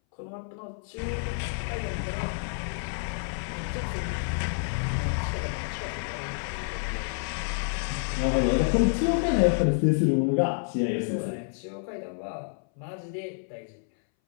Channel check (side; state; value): right; silent; 59 dB below the other